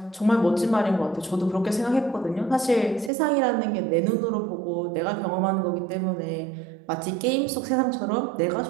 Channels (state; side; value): drops out; left; at 3.1 s